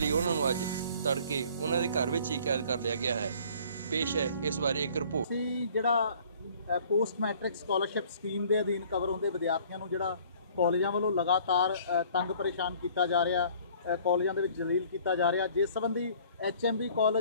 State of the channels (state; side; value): inverted; both; correlation -0.54